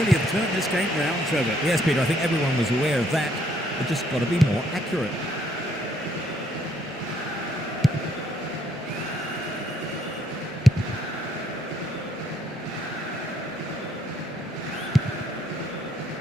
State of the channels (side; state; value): both; normal; correlation 0.69